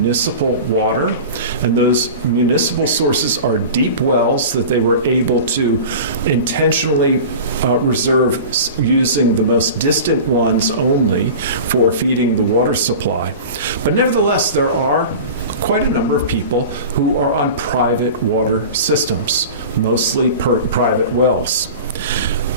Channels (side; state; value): both; inverted; correlation -0.35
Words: water. And those municipal sources are deep wells that they were able to intentionally reserve using the most distant ones only for feeding the water supply. But nevertheless, there are quite a number of people who are on private water systems, mostly private wells.